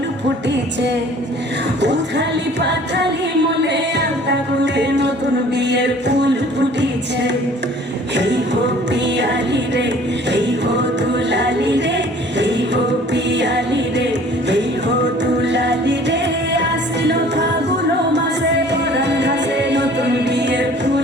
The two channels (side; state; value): both; normal; correlation 0.51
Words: ফুটিছে। উথালি পাথালি মনে আলতা কোণে নতুন বিয়ের ফুল ফুটিছে। এই হো পিয়ালি রে, এই হো দুলালি রে, এই হো পিয়ালি রে, এই হো দুলালি রে। আশ্বিন ফাগুন মাসে পরান ঘাসে নতুন বিয়ের